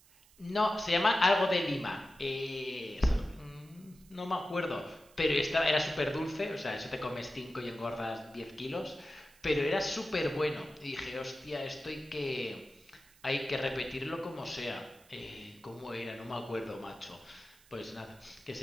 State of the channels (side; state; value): right; noise; hiss, 27 dB below the sound